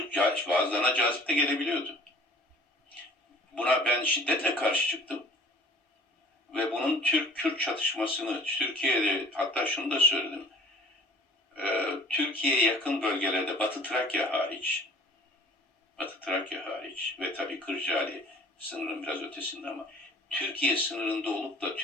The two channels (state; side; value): normal; both; correlation 0.49